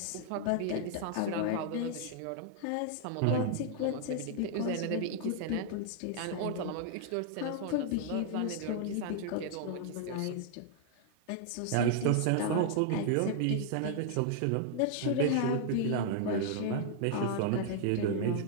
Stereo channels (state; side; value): different; both; correlation 0.00